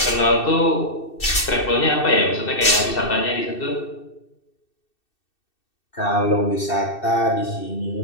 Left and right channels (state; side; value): late; right; 2.6 ms